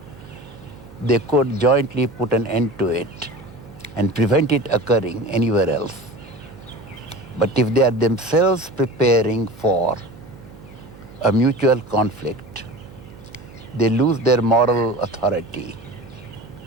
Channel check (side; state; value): right; noise; hum, 20 dB below the sound